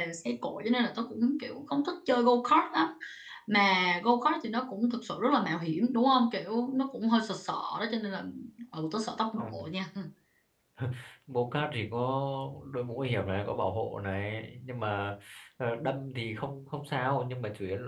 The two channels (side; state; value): both; identical; correlation 1.00